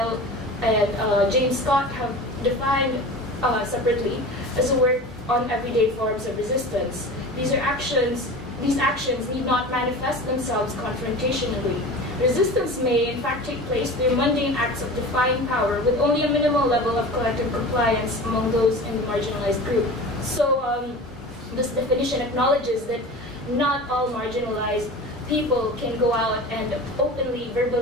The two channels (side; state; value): both; normal; correlation 0.34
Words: and James Scott have defined separately as a work on everyday forms of resistance. These actions need not manifest themselves confrontationally. Resistance may, in fact, take place through mundane acts of defying power with only a minimal level of collective compliance among those in the marginalized group. So this definition acknowledges that not all marginalized people can go out and openly,